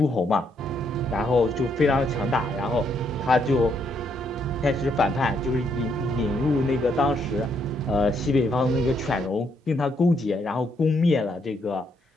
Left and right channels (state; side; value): normal; both; correlation 0.74